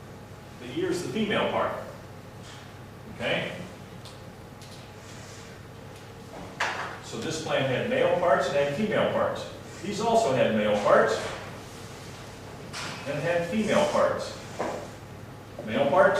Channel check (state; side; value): identical; both; correlation 1.00